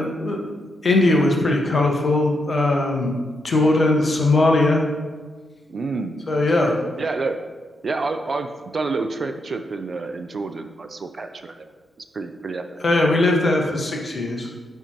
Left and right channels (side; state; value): both; normal; correlation 0.81